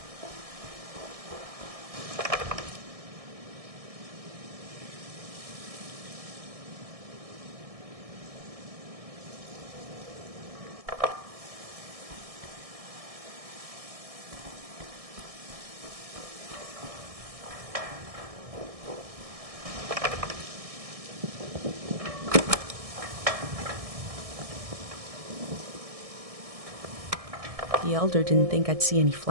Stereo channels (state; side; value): late; left; 1.6 ms